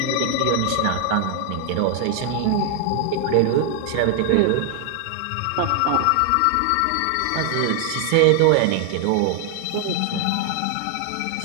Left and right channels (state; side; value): different; both; correlation 0.00